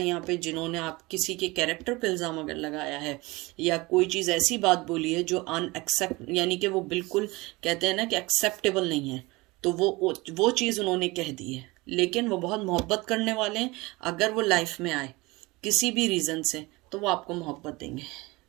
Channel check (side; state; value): left; quieter; 22.8 dB